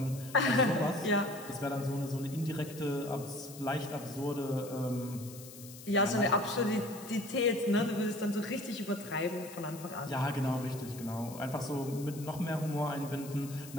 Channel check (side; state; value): left; noise; hiss, 16 dB below the sound